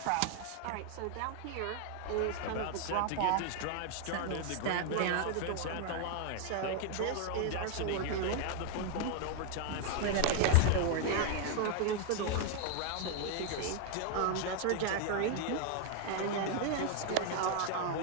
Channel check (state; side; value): different; both; correlation 0.00